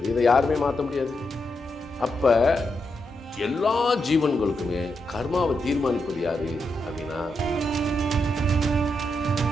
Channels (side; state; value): both; normal; correlation 0.83